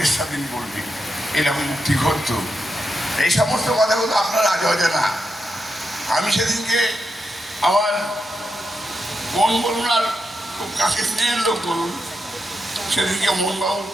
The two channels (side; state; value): both; normal; correlation 0.86